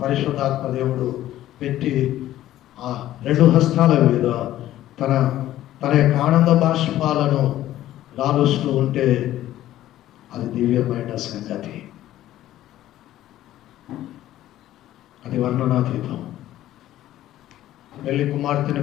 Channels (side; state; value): right; quieter; 13.7 dB